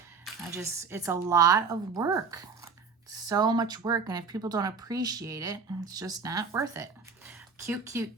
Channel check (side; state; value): left; quieter; 5.1 dB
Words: It's a lot of work. So much work, and if people don't appreciate it, it's just not worth it. Cute, cute,